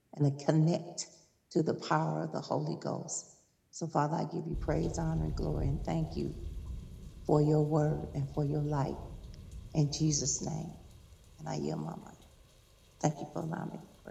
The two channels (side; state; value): both; identical; correlation 1.00